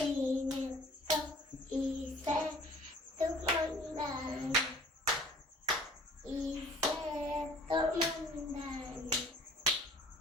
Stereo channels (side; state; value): both; normal; correlation 0.51